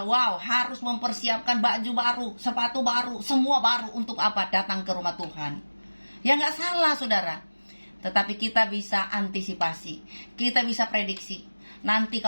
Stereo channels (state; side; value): inverted; both; correlation -1.00